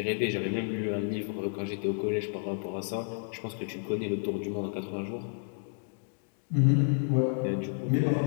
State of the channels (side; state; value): right; silent; digital silence